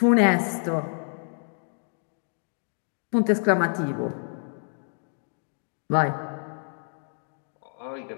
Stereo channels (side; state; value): right; silent; digital silence